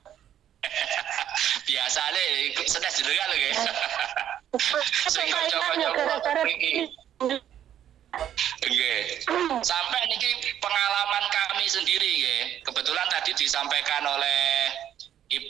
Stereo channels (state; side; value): quieter; left; 10.5 dB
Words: Biasane sedes jenengan lho nggih. Sing Gara-gara coba-coba iki. Nggih. Sampai niki pengalaman kami sendiri nggih. Kebetulan tadi disampaikan oleh